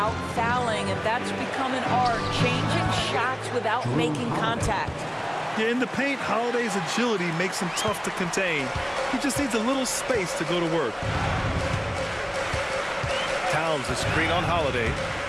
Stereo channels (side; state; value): both; identical; correlation 1.00